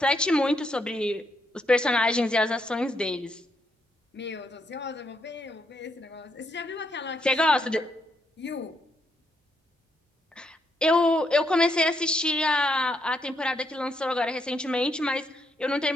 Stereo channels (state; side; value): normal; both; correlation 0.77